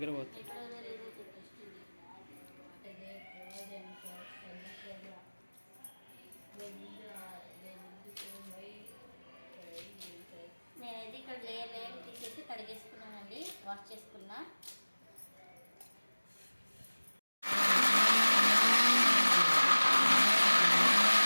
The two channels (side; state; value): both; inverted; correlation -1.00